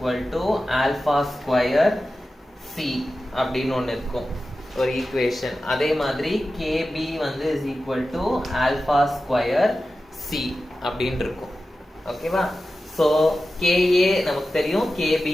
to alpha square C அப்படின்னு ஒன்று இருக்கும் ஒரு ஈக்குவேஷன். அதே மாதிரி Kb வந்து is equal to alpha square C அப்படின்னு இருக்கும். ஓகேவா? ஸோ Ka நமக்கு தெரியும், Kb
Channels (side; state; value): both; normal; correlation 0.93